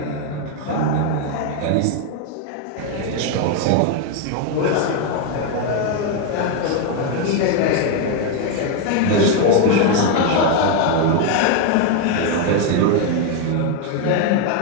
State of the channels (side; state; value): both; different; correlation 0.02